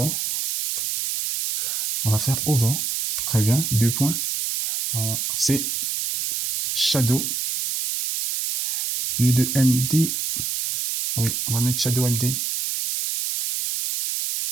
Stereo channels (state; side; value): noise; right; hiss, 2 dB below the sound